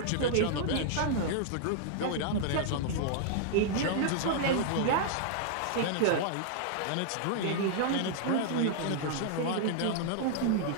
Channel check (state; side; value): different; both; correlation -0.01